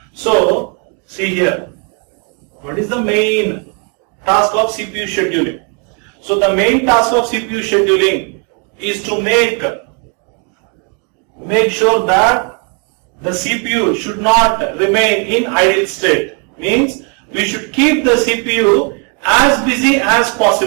So see here, what is the main task of CPU scheduling? So the main task of CPU scheduling is to make sure that the CPU should not remain in idle state. Means we should keep the CPU as busy as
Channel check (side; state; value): left; quieter; 37.9 dB